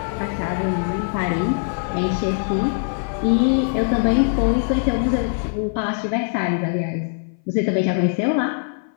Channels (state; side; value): silent; right; 58 dB below the other